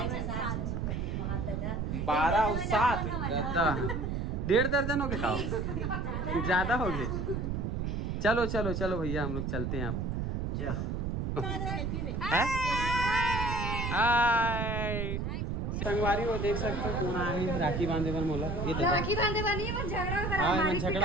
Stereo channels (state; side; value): noise; right; rumble, 1 dB below the sound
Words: 12 और 7 1.5 दर्जन हो गए खाओ ज्यादा हो गए चलो चलो चलो भैया हम लोग चलते हैं अब हाय संगवारी वो देख सकते हो कौन आए राखी बांधे पर मोला ये तो राखी बांधे वाली है, पर झगड़ा करा हां हमारी